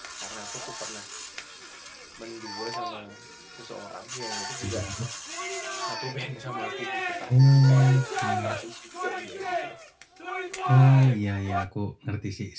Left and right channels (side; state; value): both; identical; correlation 1.00